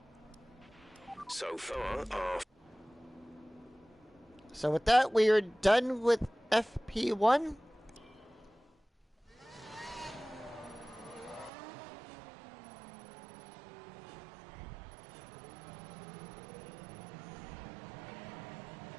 So far, our... So with that, we are done with FP1.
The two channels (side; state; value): left; drops out; at 11.5 s